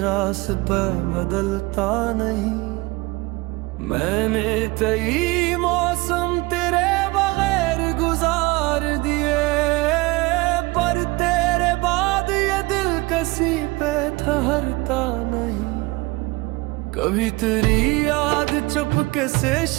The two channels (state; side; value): quieter; left; 23.2 dB